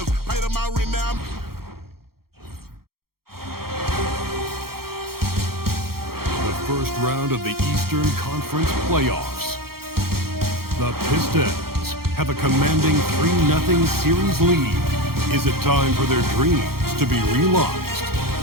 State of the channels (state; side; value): late; left; 0.94 ms